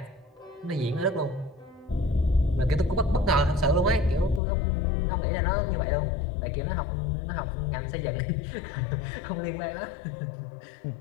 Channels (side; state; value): right; drops out; at 4.4 s